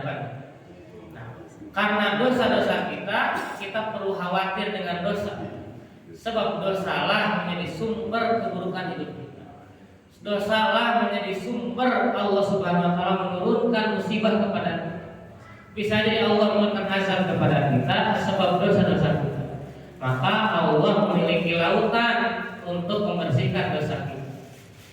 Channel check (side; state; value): both; identical; correlation 1.00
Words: Karena dosa-dosa kita perlu khawatir dengan dosa. Sebab dosalah menjadi sumber keburukan hidup kita. Dosalah menjadi sumber Allah Subhanahu wa taala menurunkan musibah kepada kita. Bisa jadi Allah menurunkan azab kepada kita sebab dosa-dosa kita. Maka Allah memiliki lautan untuk membersihkan dosa kita.